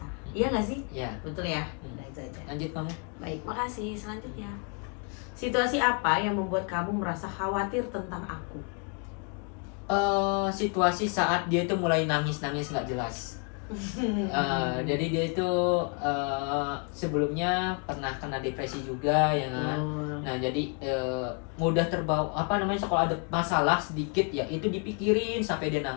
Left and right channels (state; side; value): quieter; right; 38.2 dB